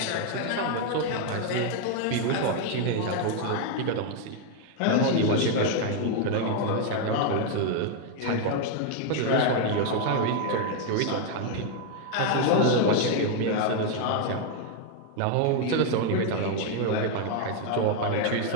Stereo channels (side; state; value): both; different; correlation 0.00